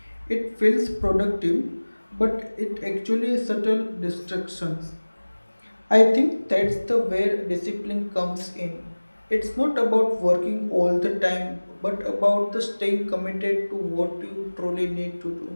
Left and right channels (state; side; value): inverted; both; correlation -1.00